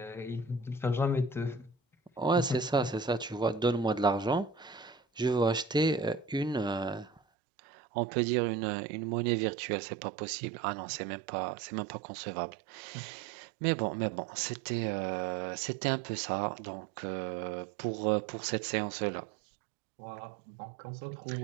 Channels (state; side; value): drops out; left; at 7.2 s